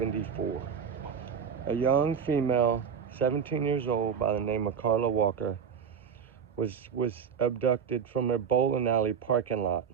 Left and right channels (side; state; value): left; quieter; 7.0 dB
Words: A young female, 17 years old, by the name of Carla Walker, was abducted from a bowling alley parking lot